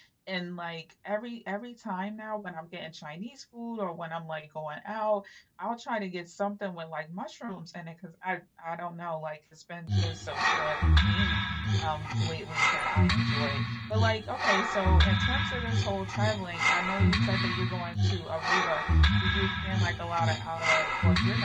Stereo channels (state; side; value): identical; both; correlation 1.00